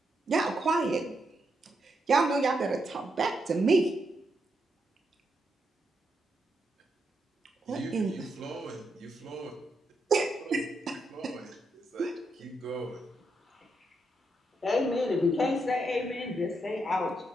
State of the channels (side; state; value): both; normal; correlation 0.81